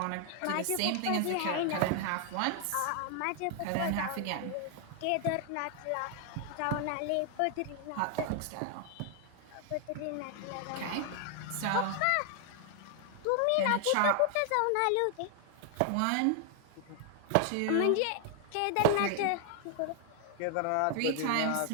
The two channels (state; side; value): different; both; correlation 0.00